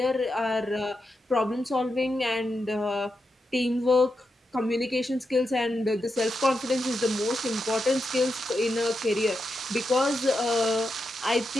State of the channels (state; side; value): normal; both; correlation 0.87